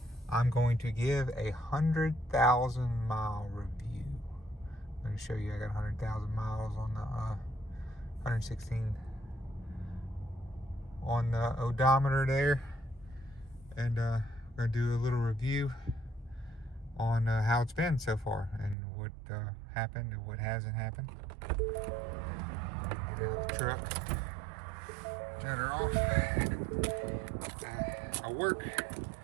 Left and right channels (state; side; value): drops out; left; at 18.8 s